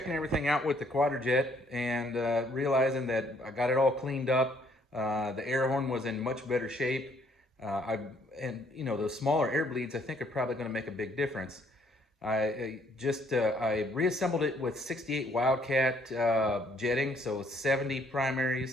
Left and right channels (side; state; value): both; normal; correlation 0.65